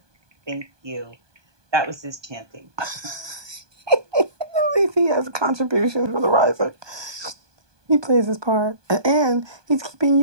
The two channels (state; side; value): late; left; 1.2 ms